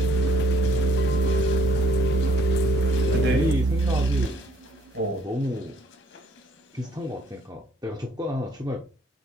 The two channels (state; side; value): normal; both; correlation 0.63